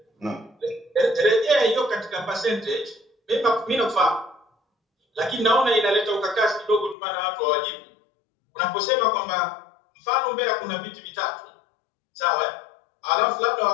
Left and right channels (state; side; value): drops out; right; at 7.0 s